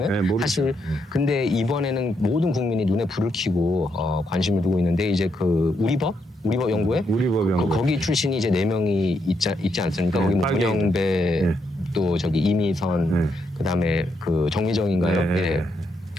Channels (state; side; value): normal; both; correlation 0.79